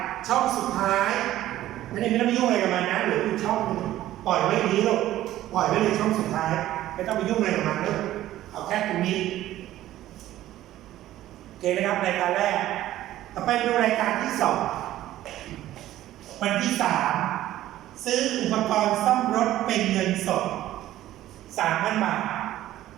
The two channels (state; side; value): quieter; left; 14.0 dB